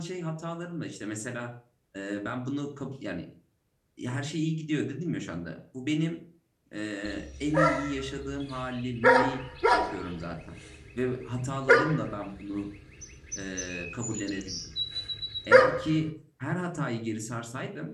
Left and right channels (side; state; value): both; identical; correlation 1.00